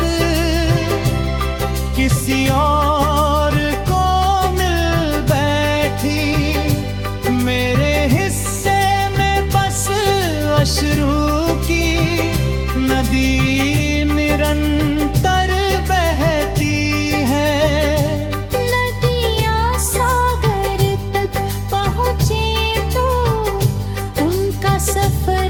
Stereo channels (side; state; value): both; identical; correlation 1.00